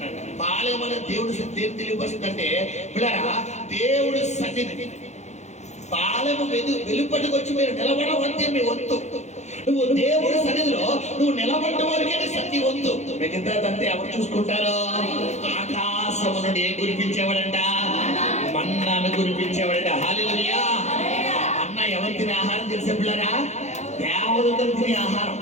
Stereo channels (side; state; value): right; late; 0.33 ms